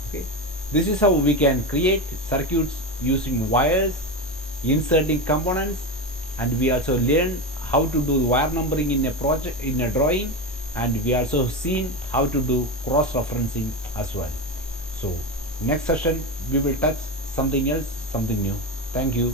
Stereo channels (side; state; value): both; normal; correlation 0.17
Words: Okay, this is how we can create circuits using wires, inserting components, and we also learn how to do wire numbering in a project, in a drawing, and we also seen how to do cross referencing as well. So next session we will touch something else, something new. Thank